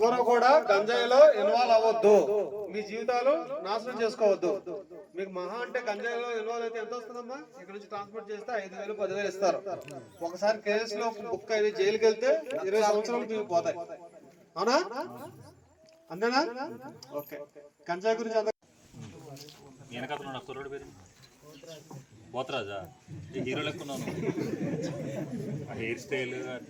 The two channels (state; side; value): identical; both; correlation 1.00